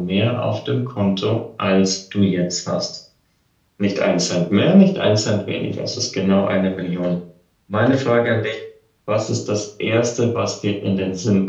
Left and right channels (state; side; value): identical; both; correlation 1.00